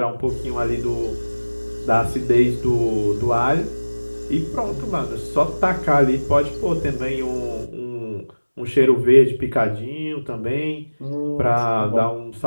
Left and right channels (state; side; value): inverted; both; correlation -1.00